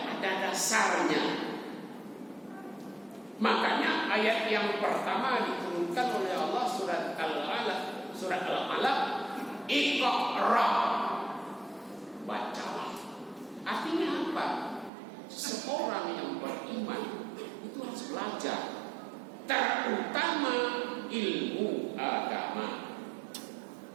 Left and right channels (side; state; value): left; drops out; at 14.9 s